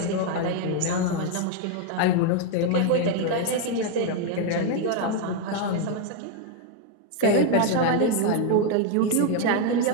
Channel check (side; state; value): both; different; correlation 0.01